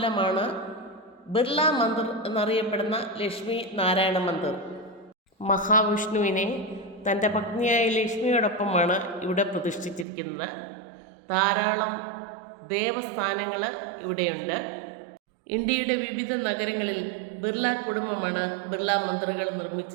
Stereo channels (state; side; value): drops out; left; at 10.1 s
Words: ബിർള മന്ദിർ എന്നറിയപ്പെടുന്ന ലക്ഷ്മി നാരായണ മന്ദിർ. മഹാവിഷ്ണുവിനെ തൻ്റെ പത്നിയായ ലക്ഷ്മിയോടൊപ്പമാണ് ഇവിടെ പ്രതിഷ്ഠിച്ചിരിക്കുന്നത്. ധാരാളം ദേവസ്ഥാനങ്ങൾ ഇവിടെയുണ്ട്. ഇന്ത്യയുടെ വിവിധ നഗരങ്ങളിൽ ബിർള കുടുംബമാണ് ബിർള മന്ദിറുകൾ